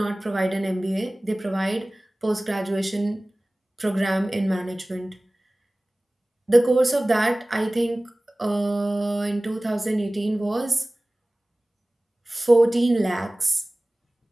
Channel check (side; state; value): both; normal; correlation 0.98